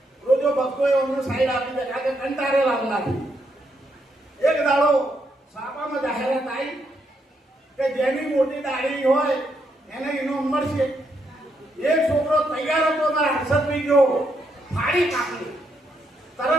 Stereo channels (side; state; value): both; normal; correlation 0.78